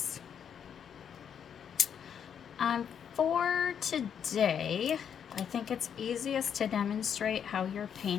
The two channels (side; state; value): right; quieter; 8.1 dB